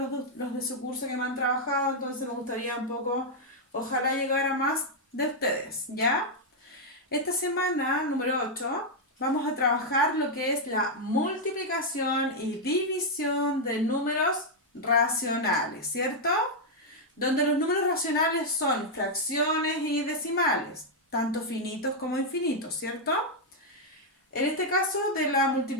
los de su curso que me han trabajado, entonces me gustaría un poco, ojalá llegar a más de ustedes, ¿ya? Esta semana, número 8, vamos a trabajar lo que es la multiplicación y división de números racionales, ¿cierto? Donde los números racionales son fracciones y decimales, tanto finitos como infinitos, ¿cierto? En este caso de la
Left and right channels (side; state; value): both; normal; correlation -0.02